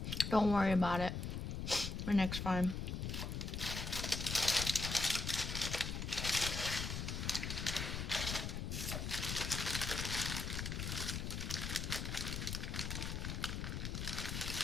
Don't worry about it. My next time.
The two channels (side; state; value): left; noise; rumble, 3 dB below the sound